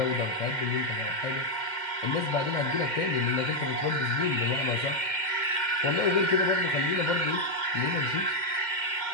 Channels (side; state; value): right; late; 2.1 ms